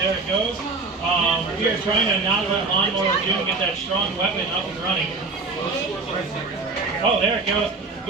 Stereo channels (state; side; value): quieter; left; 3.9 dB